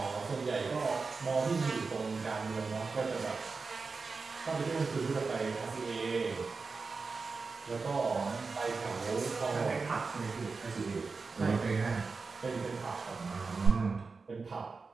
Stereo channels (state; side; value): quieter; left; 4.4 dB